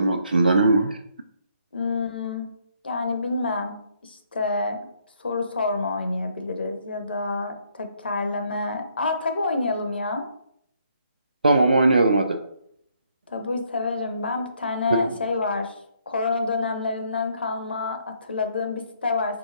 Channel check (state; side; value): inverted; both; correlation -0.70